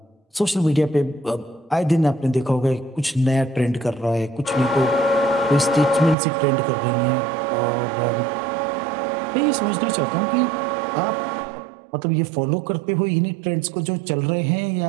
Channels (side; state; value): left; drops out; at 6.2 s